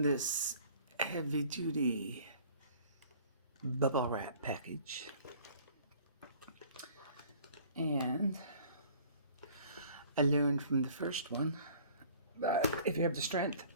this heavy-duty bubble wrap package, and I learned from the first one that if you have the strength,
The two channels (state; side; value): inverted; both; correlation -0.52